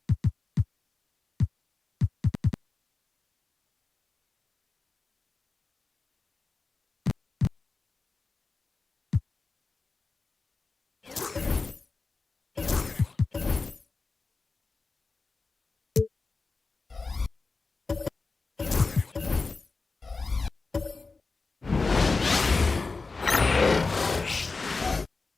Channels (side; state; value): right; quieter; 4.0 dB